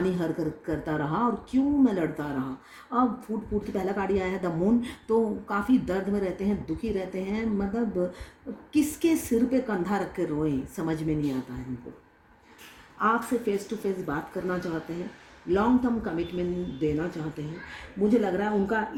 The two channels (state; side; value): identical; both; correlation 1.00